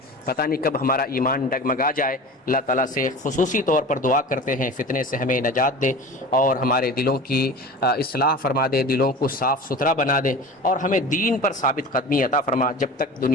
پتہ نہیں کب ہمارا ایمان ڈگمگا جائے۔ اللہ تعالیٰ سے خصوصی طور پر دعا کرتے ہیں فتنے سے ہمیں نجات دے اور ہمارے دلوں کی اصلاح فرما دے، دلوں کو صاف ستھرا بنا دے اور ہمیں دین پر ثابت قدمی عطا فرما، جب تک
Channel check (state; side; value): normal; both; correlation 0.35